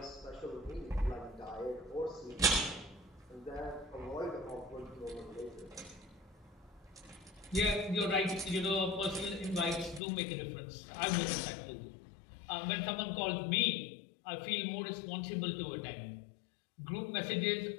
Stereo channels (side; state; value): right; drops out; at 10.0 s